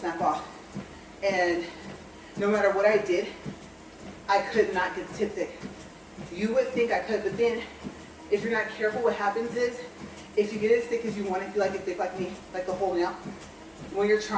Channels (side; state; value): both; identical; correlation 1.00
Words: off. And no matter what I did, I could not get the tip thick. You would think I could, but then if you're not careful, what happens is, if you get it as thick as you want, if you like it thick like me, like the whole nail, when you're